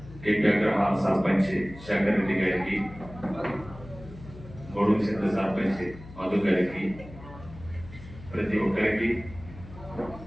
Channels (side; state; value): left; noise; hum, 16 dB below the sound